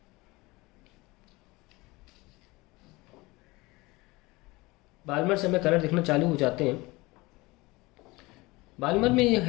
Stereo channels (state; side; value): quieter; right; 22.4 dB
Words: बाल्मर से हमें कलर देखना चालू हो जाते हैं। बाल्मर में यह